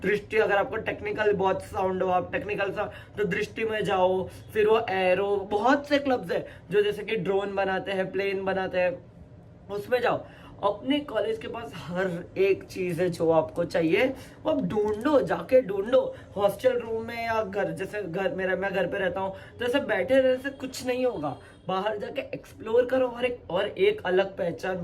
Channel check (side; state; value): both; identical; correlation 1.00